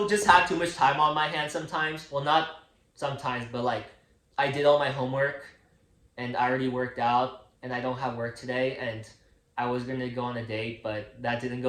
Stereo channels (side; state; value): both; identical; correlation 1.00